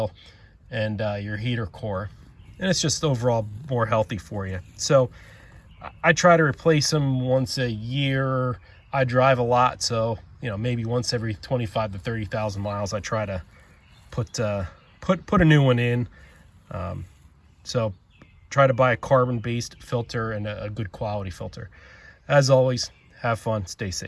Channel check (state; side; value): identical; both; correlation 1.00